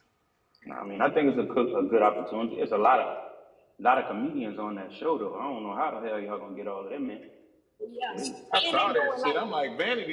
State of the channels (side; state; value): both; identical; correlation 1.00